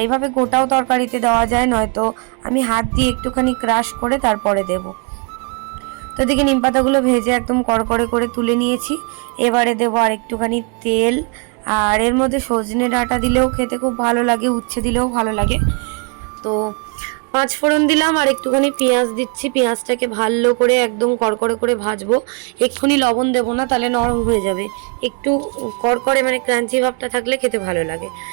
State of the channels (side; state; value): left; quieter; 34.2 dB